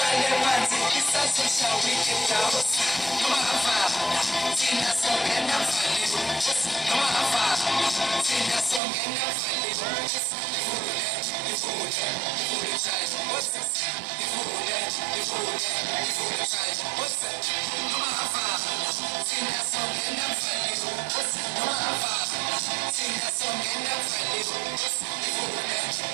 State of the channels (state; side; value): drops out; left; at 8.8 s